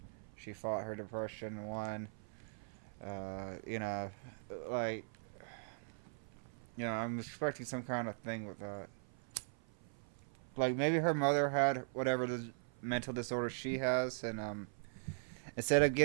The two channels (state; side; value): silent; left; 51 dB below the other